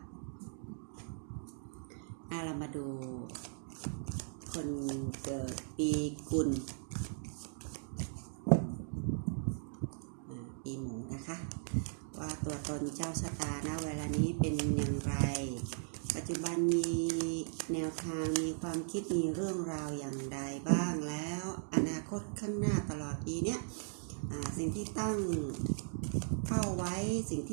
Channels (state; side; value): silent; left; digital silence